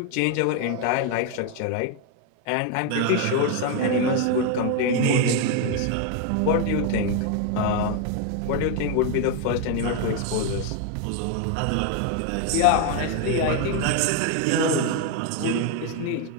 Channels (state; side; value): different; both; correlation 0.01